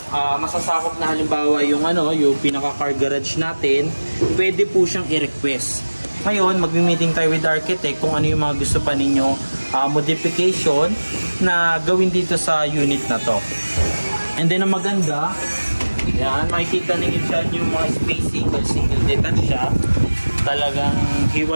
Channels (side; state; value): both; inverted; correlation -1.00